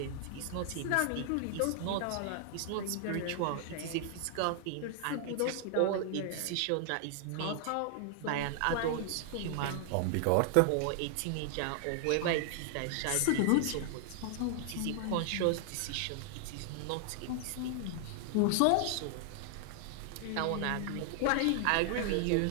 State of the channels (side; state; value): both; different; correlation 0.00